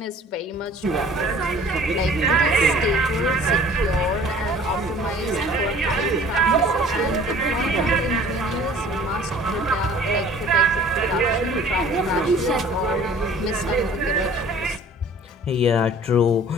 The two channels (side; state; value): both; normal; correlation 0.49